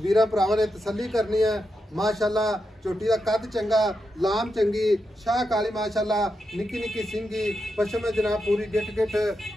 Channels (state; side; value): normal; both; correlation 0.86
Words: वीर भरावां ने तसल्ली करनी है। माशाअल्लाह झोटी का कद चंगा लाम चंगी शाह काली माशाअल्लाह निक्की निक्की सिंगी पशम जनाब पूरी गिट गिट